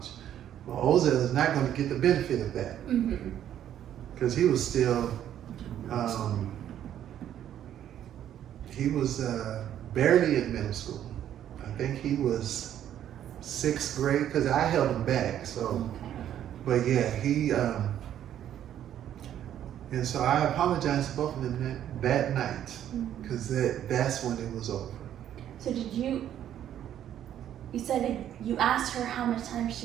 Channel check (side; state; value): left; quieter; 10.8 dB